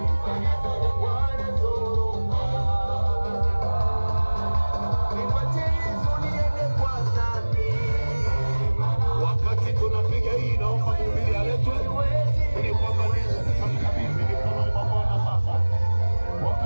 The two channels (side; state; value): both; inverted; correlation -1.00